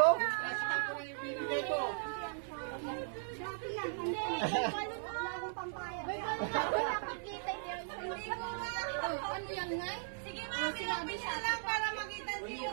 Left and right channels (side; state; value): left; silent; 53 dB below the other